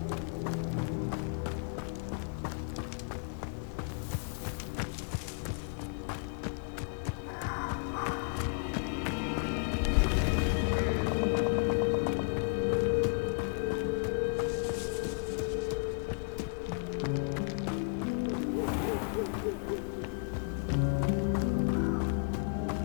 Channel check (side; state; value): right; silent; 56 dB below the other